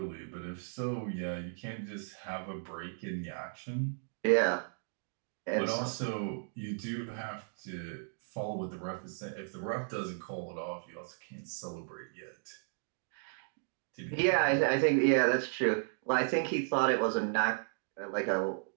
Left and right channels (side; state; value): left; silent; digital silence